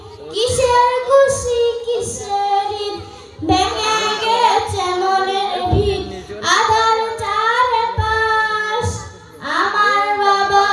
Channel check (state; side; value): identical; both; correlation 1.00